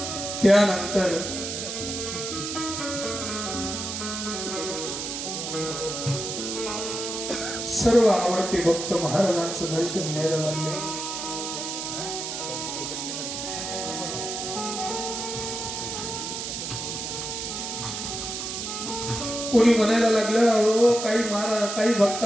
त्यानंतर सर्व आवडते भक्त महाराजांचं दर्शन घ्यायला लागले कोणी म्हणायला लागलं अहो काही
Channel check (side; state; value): right; noise; hiss, 5 dB below the sound